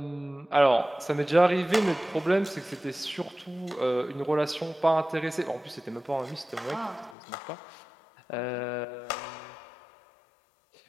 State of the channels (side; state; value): right; drops out; at 7.2 s